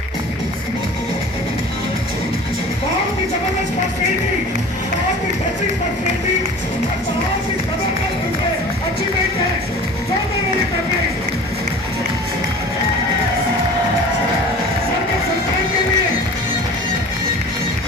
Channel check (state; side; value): normal; both; correlation 0.41